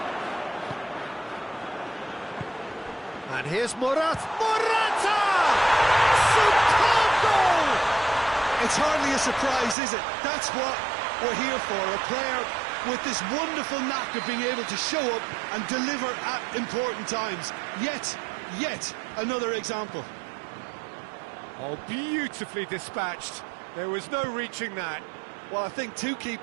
And here's Morata! Superb goal! It's hardly a surprise, is it? That's what we're here for, a player with this wonderful knack of being able to show up and deliver at important times. Yet another example. Oh, beautifully dispatched. There was no reaching that. Well, I think two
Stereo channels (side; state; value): left; drops out; at 9.8 s